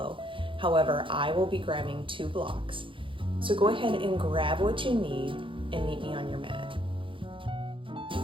However, I will be grabbing 2 blocks. So go ahead and grab what you need and meet me on your mat.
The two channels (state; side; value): late; left; 0.25 ms